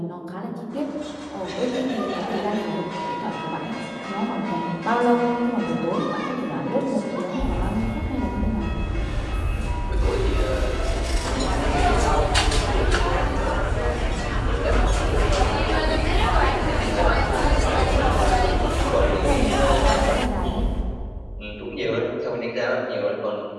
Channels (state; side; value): identical; both; correlation 1.00